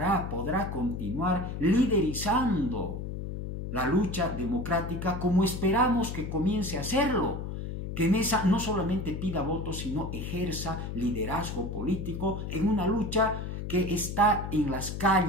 continuar liderizando la lucha democrática como esperamos que comience a hacerlo, que Mesa no solamente pida votos, sino ejerza liderazgo político en una lucha que está en las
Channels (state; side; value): noise; left; hum, 6 dB below the sound